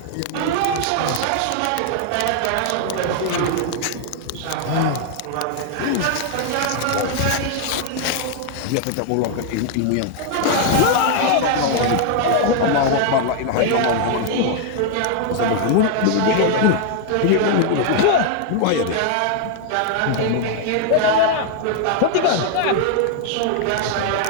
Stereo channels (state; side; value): different; both; correlation 0.00